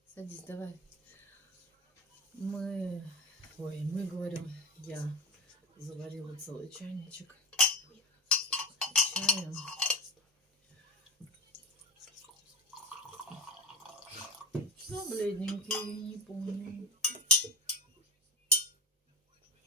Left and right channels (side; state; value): both; normal; correlation 0.22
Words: Садись, давай. Мы говорим, я заварила целый чайничек чая. Ну, бледненький, не помню.